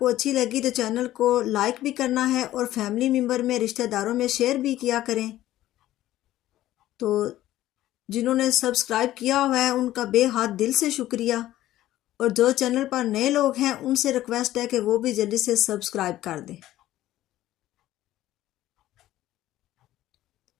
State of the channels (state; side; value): quieter; right; 14.3 dB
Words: अच्छी लगी तो चैनल को लाइक भी करना है और फैमिली मेम्बर में रिश्तेदारों में शेयर भी किया करें। तो जिन्होंने सब्सक्राइब किया हुआ है उनका बेहद दिल से शुक्रिया। और जो चैनल पर नए लोग हैं उनसे रिक्वेस्ट है कि वो भी जल्दी से सब्सक्राइब कर दें।